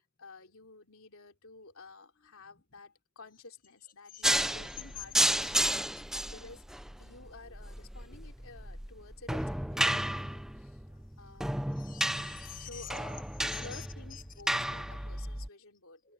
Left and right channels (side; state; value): both; normal; correlation 0.75